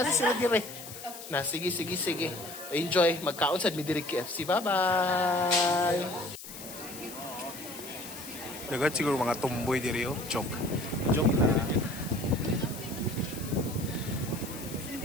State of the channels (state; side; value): noise; left; hiss, 13 dB below the sound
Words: sila dire. Na, sige. Enjoy. Magkaon sa Midiri KFC. Bye-bye! Dagat siguro mga tumboy diri oh. Joke na.